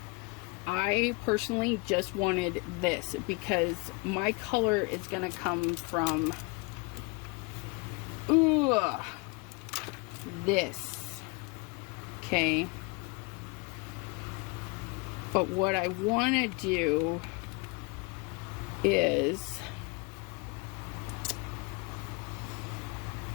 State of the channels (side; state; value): right; quieter; 28.2 dB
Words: I personally just wanted this because my color is going to come from this. Okay. But what I want to do is